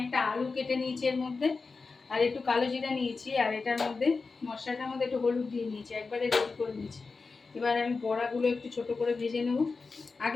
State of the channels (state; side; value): quieter; right; 4.3 dB